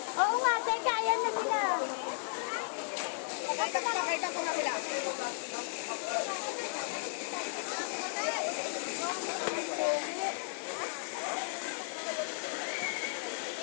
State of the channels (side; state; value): right; silent; 55 dB below the other